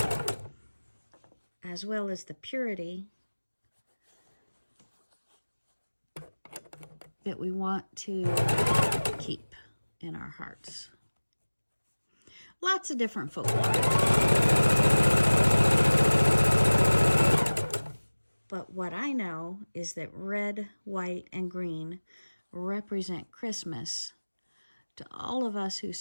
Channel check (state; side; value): inverted; both; correlation -1.00